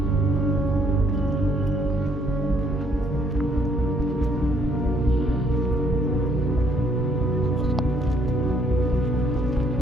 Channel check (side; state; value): both; normal; correlation 0.66